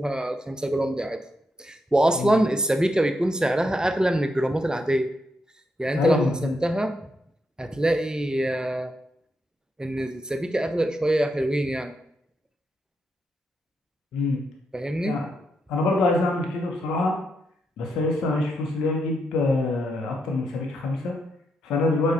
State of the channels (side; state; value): both; normal; correlation 0.81